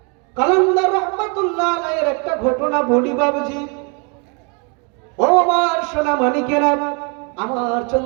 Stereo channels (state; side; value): quieter; left; 34.7 dB